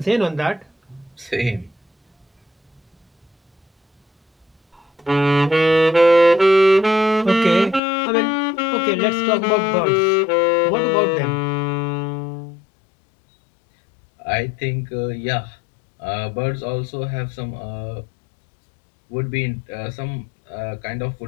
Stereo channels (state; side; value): drops out; right; at 7.8 s